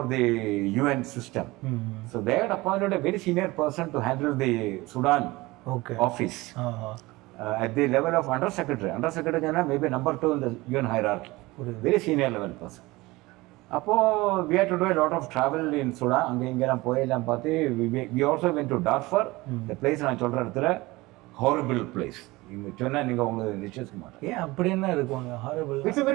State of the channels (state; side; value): quieter; left; 21.0 dB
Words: the UN system. So they had appointed a very senior person to handle the Sudan office at the level of under secretary. Under secretary maybe number 2 in the UN hierarchy. Very senior level person. அப்போ we had to do a lot of travel in Sudan. அங்கே இங்கெல்லாம் போயெல்லாம் பார்த்து we also went to Darfur. The place நான் சொல்கிற இடத்துல horrible place. நீங்கள் சொன்னால் நீங்கள் உங்களுக்கு நிச்சயிக்க மாட்டேன். ஏன் அப்படி என்ன இருக்குவாங்க? horrible. It's a